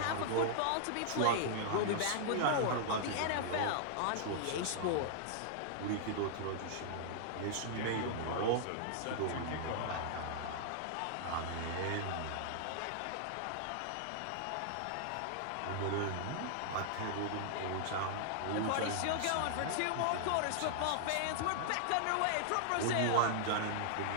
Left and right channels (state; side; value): different; both; correlation -0.01